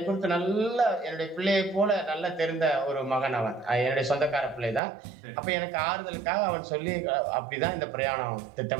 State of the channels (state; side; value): drops out; left; at 4.8 s